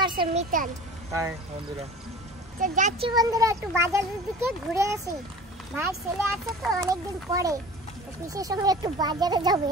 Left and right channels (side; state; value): both; normal; correlation 0.40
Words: আসছে মিতান। হাই বন্ধুরা। তো যাচ্ছি বন্ধুরা, একটু বাজারের দিকে ঘুরে আসি। ভাইয়ের ছেলে আসছে তো অনেকদিন পরে, তো পিসের সঙ্গে একটু বাজারে যাবে,